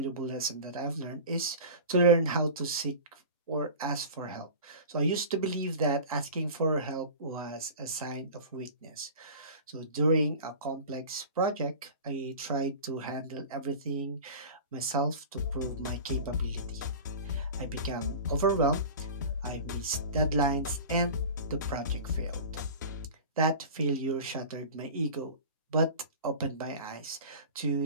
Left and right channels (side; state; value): both; inverted; correlation -0.36